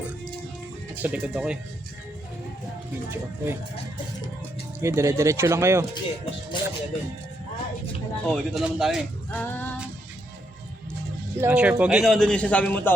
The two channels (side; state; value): both; normal; correlation 0.78